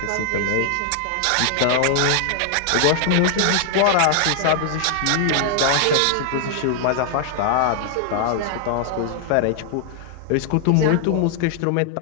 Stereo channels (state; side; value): different; both; correlation 0.00